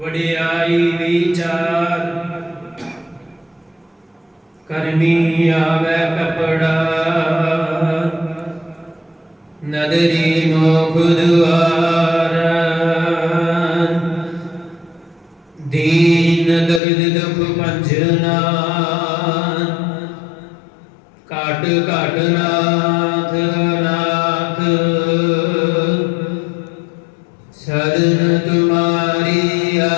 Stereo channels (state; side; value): drops out; right; at 16.8 s